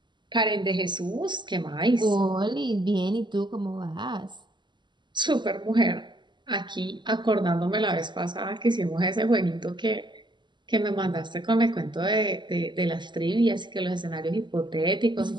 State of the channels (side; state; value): left; late; 0.22 ms